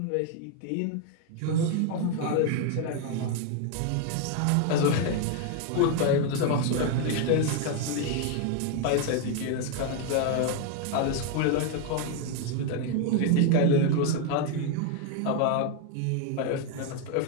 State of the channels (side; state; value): both; different; correlation 0.01